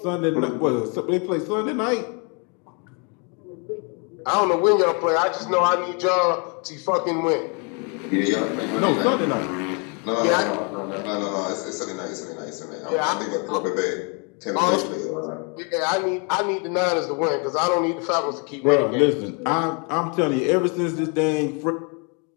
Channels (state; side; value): quieter; right; 35.5 dB